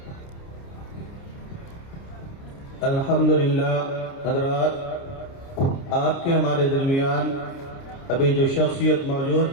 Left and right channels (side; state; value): right; late; 29 ms